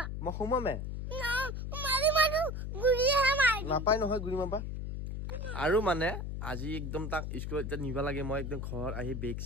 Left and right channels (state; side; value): noise; left; hum, 4 dB below the sound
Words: মই হুমামে না মাৰি মাৰু গুৰিয়ে মাৰি নাপাই নহয় গুৰি মাবা আৰু মানে আজি একদম তাক স্কুলত নিবা লাগে মই একদম ঘৰত আহি বেগ